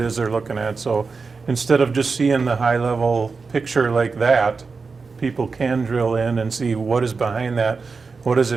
is they're looking at. So instead of just seeing the high level picture like that, people can drill in and see what is behind that. What does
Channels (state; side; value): quieter; left; 4.6 dB